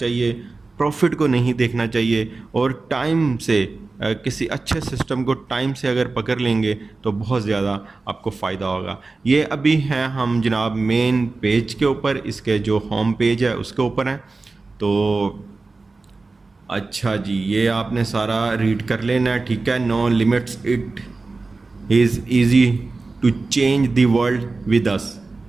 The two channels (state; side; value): quieter; left; 3.7 dB